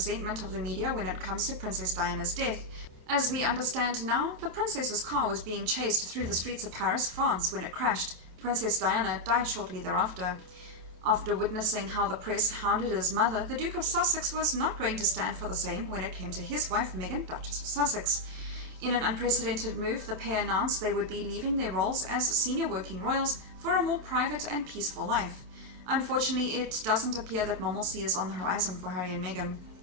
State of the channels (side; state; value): left; late; 27 ms